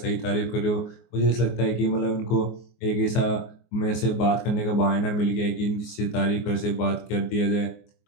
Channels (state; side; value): late; right; 24 ms